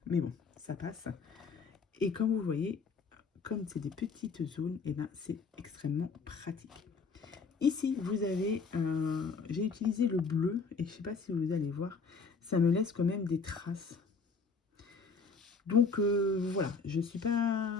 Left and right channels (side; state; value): right; quieter; 4.7 dB